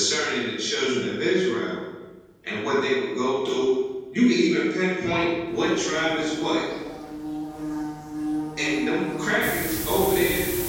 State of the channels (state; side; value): identical; both; correlation 1.00